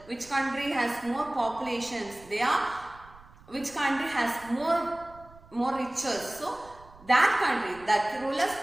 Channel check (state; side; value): noise; right; rumble, 22 dB below the sound